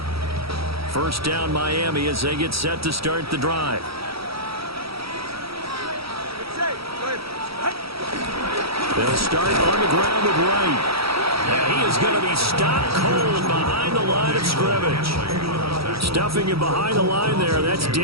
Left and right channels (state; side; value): late; left; 0.76 ms